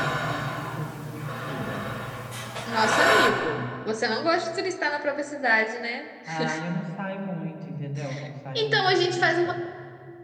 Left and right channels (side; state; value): both; identical; correlation 1.00